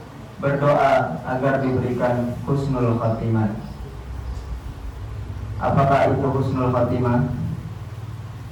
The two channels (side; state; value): both; identical; correlation 1.00